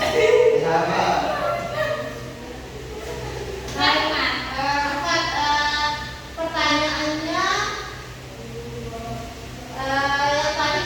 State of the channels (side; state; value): both; identical; correlation 1.00